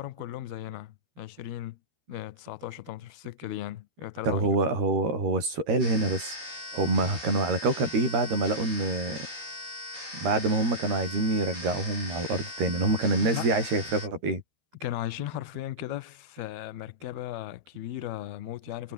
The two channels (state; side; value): late; left; 13 ms